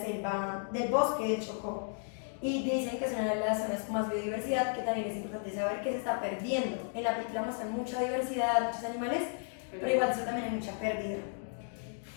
del bosque de Chocó. Y dicen que es una de las zonas con más biodiversidad, que también es importante saber que se está perdiendo. En la película muestran mucha diversidad, muchos animales, pero igual eso también hay mucha pérdida.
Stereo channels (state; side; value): silent; right; 55 dB below the other